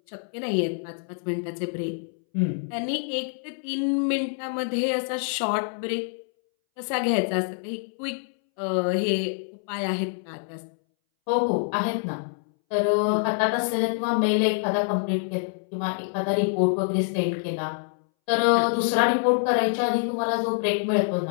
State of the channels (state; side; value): silent; right; 61 dB below the other